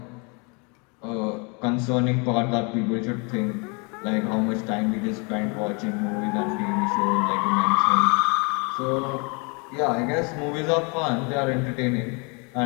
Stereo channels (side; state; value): right; quieter; 32.5 dB